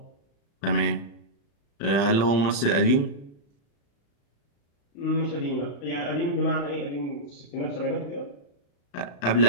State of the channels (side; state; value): right; late; 35 ms